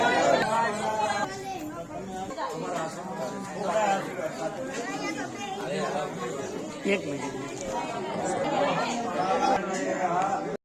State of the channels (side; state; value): both; identical; correlation 1.00